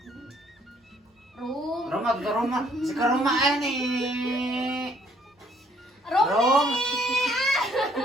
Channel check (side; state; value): both; normal; correlation 0.64